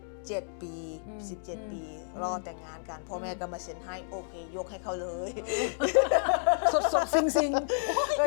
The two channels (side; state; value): right; silent; digital silence